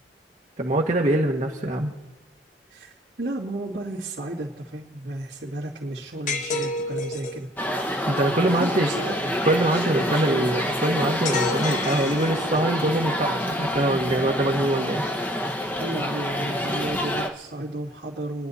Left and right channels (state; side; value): normal; both; correlation 0.56